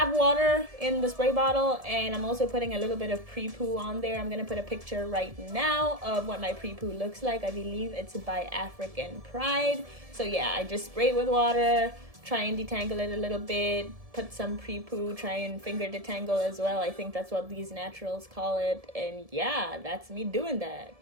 water in the spray bottle, and I'm also putting a little bit of pre-poo on there. I'm gonna put a picture right now of what my pre-poo looks like. I believe it's by African Pride. So yeah, I just spray it with water, try and detangle it a little bit, put some pre-poo, try and finger detangle as well. I think that's what these naturals call it. And yeah, that's me doing that.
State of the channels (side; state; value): left; late; 1.7 ms